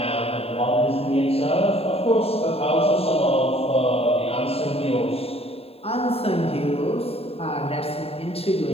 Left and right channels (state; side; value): late; right; 0.29 ms